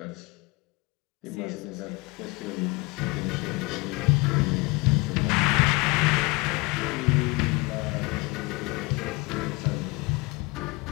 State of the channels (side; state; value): right; quieter; 25.7 dB